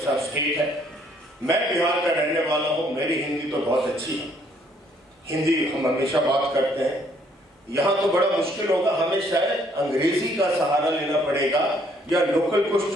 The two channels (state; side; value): normal; both; correlation 0.65